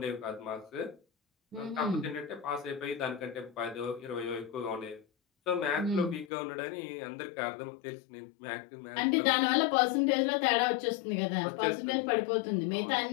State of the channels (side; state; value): right; drops out; at 6.2 s